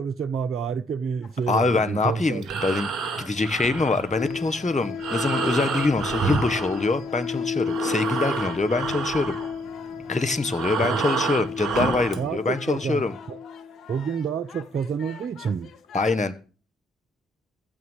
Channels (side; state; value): both; normal; correlation 0.69